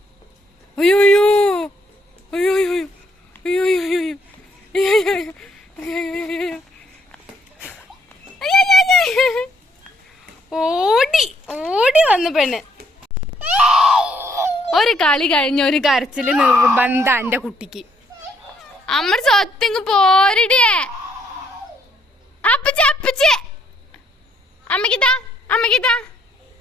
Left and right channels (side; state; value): both; normal; correlation 0.70